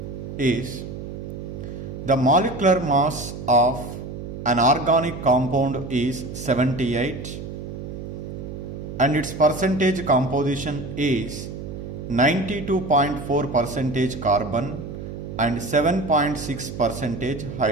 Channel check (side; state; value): right; noise; hum, 9 dB below the sound